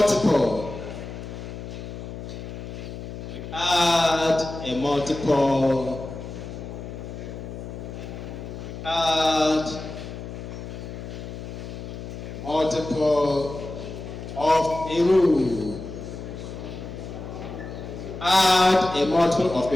We add a multiple. Add a multiple of a row. Add a multiple of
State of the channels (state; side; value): noise; left; hum, 9 dB below the sound